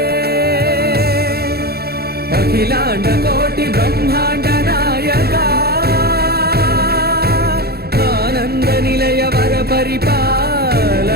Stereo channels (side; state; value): left; late; 0.46 ms